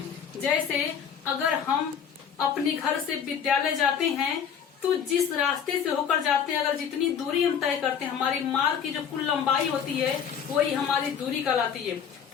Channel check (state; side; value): quieter; right; 7.7 dB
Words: जैसे अगर हम अपने घर से विद्यालय जाते हैं तो जिस रास्ते से होकर जाते हैं, अगर जितनी दूरी हम तय करते हैं, हमारी मार्ग की जो कुल लंबाई होती है वही हमारी दूरी कहलाती है।